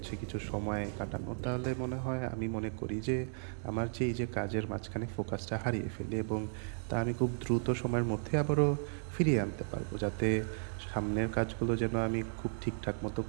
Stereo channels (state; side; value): silent; left; digital silence